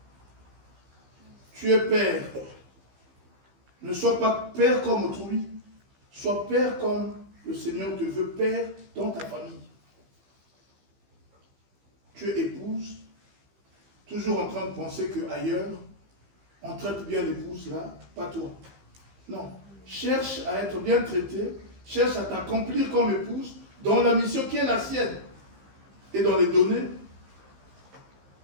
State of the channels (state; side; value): late; left; 15 ms